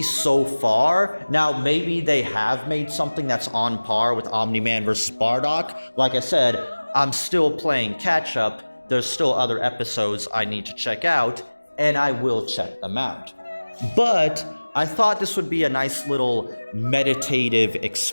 so far, now maybe they have made something that's on par with Omni-Man versus Bardock. Like I said, I'm still playing catch up. There's still other episodes I need to check out, and I will check them out. But I thought this would be a nice little meditative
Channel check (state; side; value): inverted; both; correlation -1.00